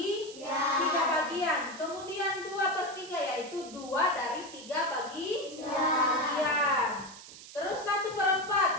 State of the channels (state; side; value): noise; right; hiss, 16 dB below the sound